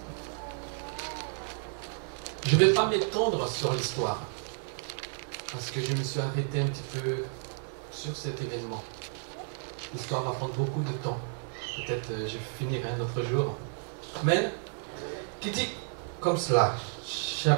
Je ne vais pas m'étendre sur l'histoire, parce que je me suis arrêté un petit peu sur cet événement. L'histoire va prendre beaucoup de temps. Peut-être je finirai un autre jour. Amen. Qui dit comme cela,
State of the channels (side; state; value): left; silent; 57 dB below the other